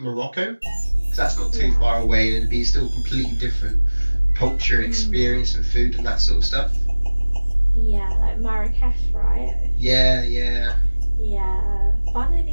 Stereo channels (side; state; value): both; inverted; correlation -1.00